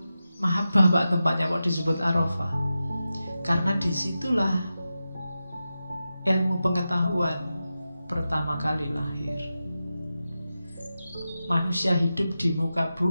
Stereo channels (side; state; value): both; inverted; correlation -0.92